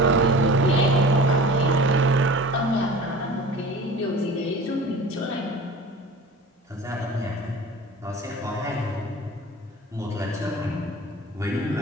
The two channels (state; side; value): normal; both; correlation 0.39